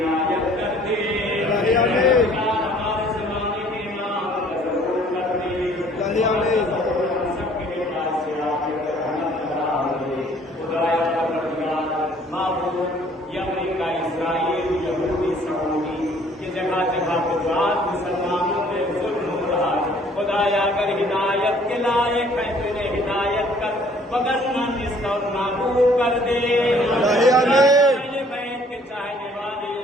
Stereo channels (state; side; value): normal; both; correlation 0.57